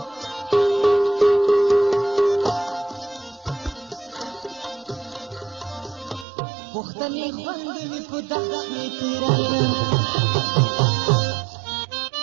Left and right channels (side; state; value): left; drops out; at 6.2 s